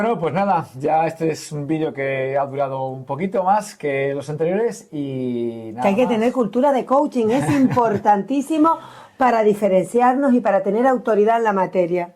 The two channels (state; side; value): identical; both; correlation 1.00